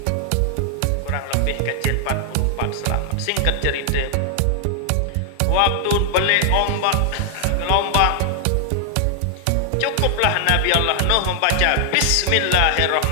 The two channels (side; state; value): both; different; correlation 0.00